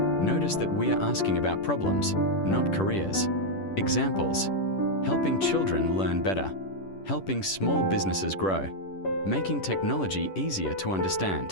that we are asking about problems, not careers. Examples: helping children learn better, helping small businesses grow, making technology easier to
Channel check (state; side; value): late; right; 10 ms